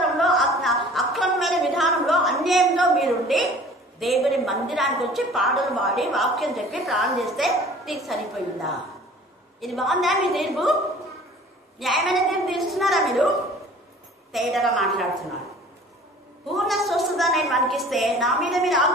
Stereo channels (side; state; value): both; normal; correlation 0.48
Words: అక్రమమైన విధానంలో, అన్యాయంలో మీరుండి దేవుని మందిరానికి వచ్చి పాటలు పాడి వాక్యం చెప్పి ప్రాణం చేస్తే నీకు సరిపోయిందా? ఇది బాగుందా మీ తీర్పు? న్యాయమైన తీర్పు తీస్తున్నారా మీరు? తేటగా మాట్లాడుతున్నారు. పూర్ణ స్వస్థత నేను మనకిస్తే నా మీద మీరు